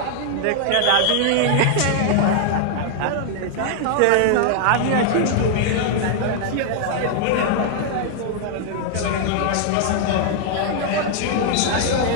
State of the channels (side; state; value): both; different; correlation 0.00